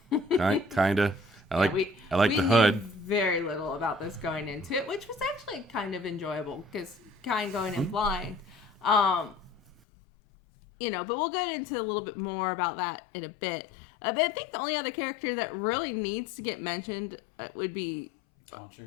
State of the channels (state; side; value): drops out; right; at 9.8 s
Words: kind of. I like the hood. Knew very little about this going into it, which was actually kind of enjoyable because kind of going in blind. But we'll get into a little bit more about that in a bit. But I think the only other character that really needs to get mentioned would be